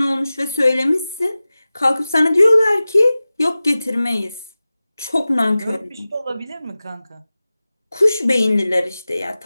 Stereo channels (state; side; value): inverted; both; correlation -0.96